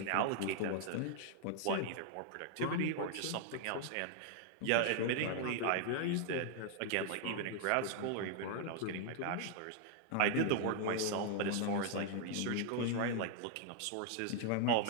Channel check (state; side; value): different; both; correlation 0.00